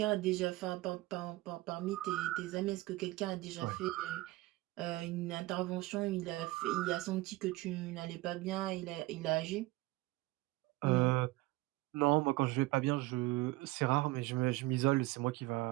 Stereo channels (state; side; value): quieter; left; 19.6 dB